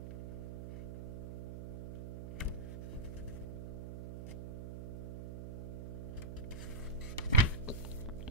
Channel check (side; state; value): right; noise; hum, 7 dB below the sound